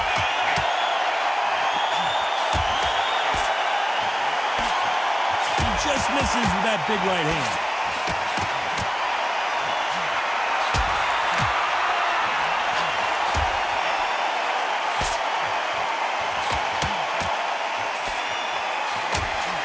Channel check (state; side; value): identical; both; correlation 1.00